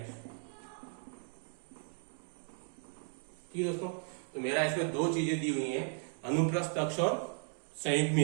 ठीक है दोस्तों, तो मेरा इसमें 2 चीजें दी हुई हैं, अनुप्रस्थ अक्ष और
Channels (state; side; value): silent; left; 54 dB below the other